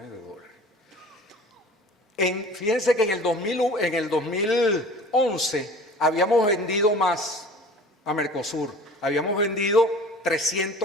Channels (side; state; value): both; normal; correlation 0.44